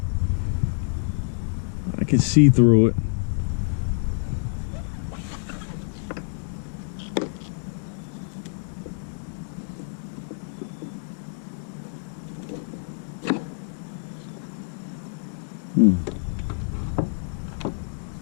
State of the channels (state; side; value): silent; right; digital silence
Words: I can see through it.